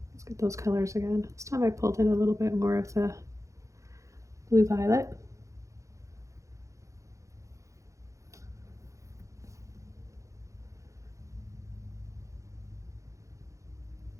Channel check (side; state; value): left; late; 0.15 ms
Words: Let's get those colors again. This time I pulled in a little bit more of the blue violet.